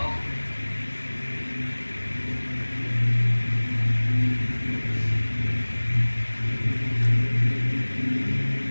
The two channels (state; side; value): inverted; both; correlation -1.00